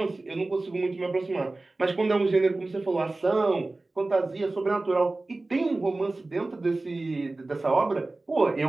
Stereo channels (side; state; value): left; quieter; 3.1 dB